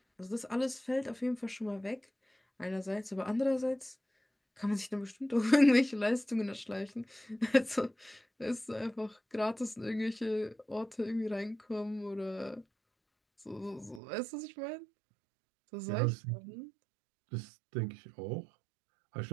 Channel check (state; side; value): drops out; left; at 14.0 s